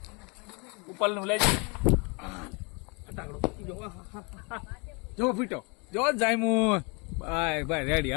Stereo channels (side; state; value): right; quieter; 31.2 dB